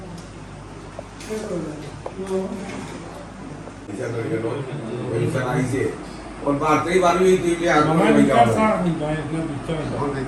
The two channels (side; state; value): both; identical; correlation 1.00